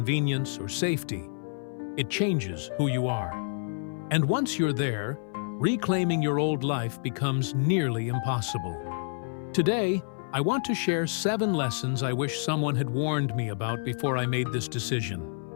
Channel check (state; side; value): silent; right; 59 dB below the other